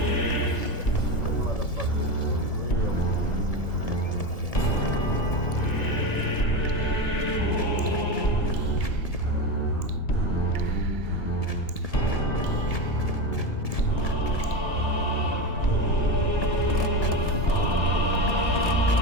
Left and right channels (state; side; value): late; right; 1.8 ms